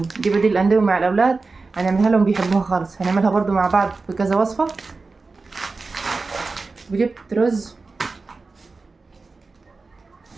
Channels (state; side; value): quieter; left; 3.9 dB